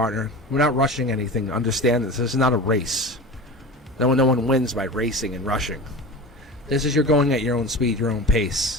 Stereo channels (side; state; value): both; normal; correlation 0.32